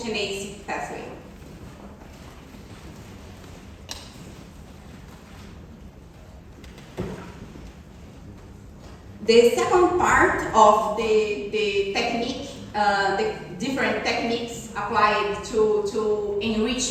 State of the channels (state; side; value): identical; both; correlation 1.00